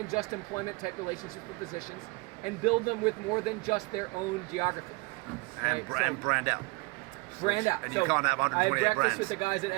just employment type relationships with physicians and build them with more than just their own geography. And brand out. Brand out. And you can't have 128 I had breakfast brands. with the guys at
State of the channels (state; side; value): quieter; left; 26.7 dB